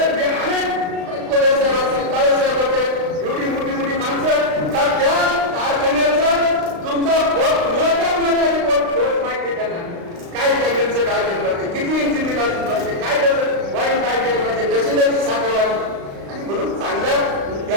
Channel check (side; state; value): left; late; 36 ms